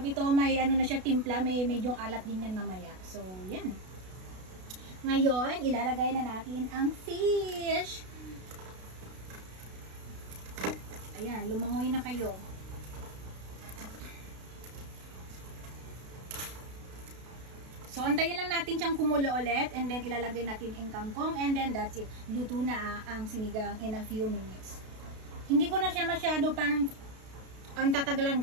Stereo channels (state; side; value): late; left; 32 ms